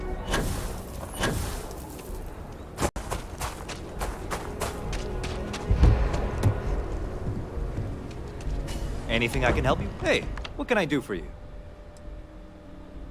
Anything I can help you? Hey, what can I do for you?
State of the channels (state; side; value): identical; both; correlation 1.00